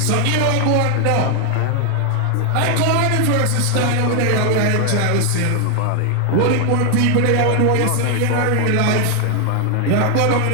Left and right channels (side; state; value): both; different; correlation 0.00